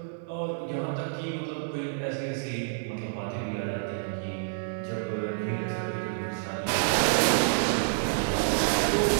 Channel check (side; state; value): left; silent; digital silence